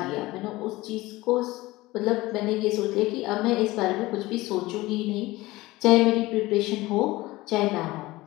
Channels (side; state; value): right; quieter; 19.3 dB